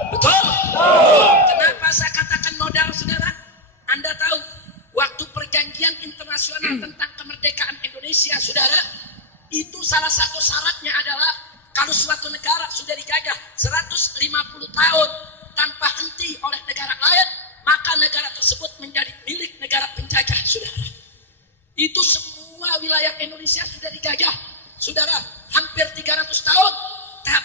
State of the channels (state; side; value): normal; both; correlation -0.01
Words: Betul? Kenapa saya katakan modal saudara? Anda tahu, waktu perjanjian internasional tentang kemerdekaan Indonesia saudara, itu salah satu syaratnya adalah kalau suatu negara sudah dijajah 150 tahun tanpa henti oleh negara lain, maka negara tersebut menjadi milik negara penjajah, saudara. Itu semua wilayah Indonesia sudah dijajah, saudara, hampir 300 tahun,